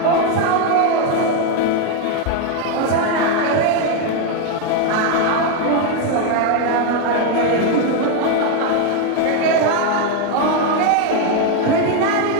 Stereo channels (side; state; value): both; different; correlation 0.01